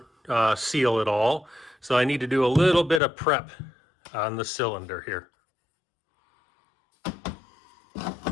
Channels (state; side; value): drops out; right; at 3.0 s